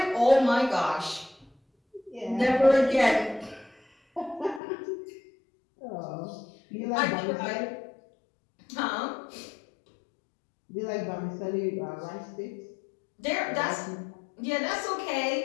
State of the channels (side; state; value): right; drops out; at 4.6 s